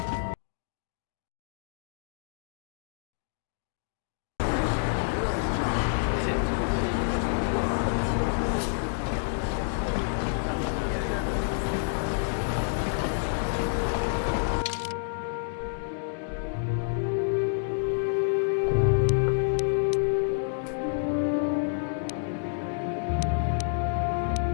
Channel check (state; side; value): silent; right; digital silence